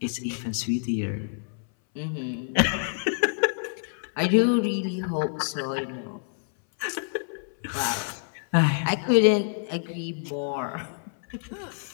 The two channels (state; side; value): silent; right; 60 dB below the other